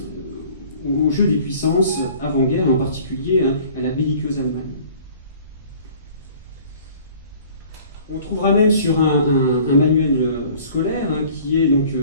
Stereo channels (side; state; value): both; inverted; correlation -0.51